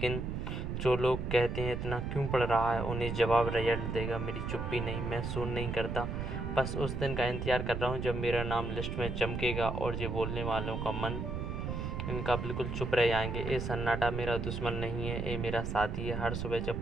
जो लोग कहते हैं इतना क्यों पढ़ रहा है, उन्हें जवाब रिजल्ट देगा। मेरी चुप्पी नहीं, मैं सुन नहीं करता, बस उस दिन का इंतज़ार कर रहा हूँ जब मेरा नाम लिस्ट में चमकेगा और ये बोलने वालों का मन इनका बिल्कुल चुप रह जाएंगे। ये सन्नाटा मेरा दुश्मन नहीं है, ये मेरा साथी है। हर सुबह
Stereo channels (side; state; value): right; noise; rumble, 3 dB below the sound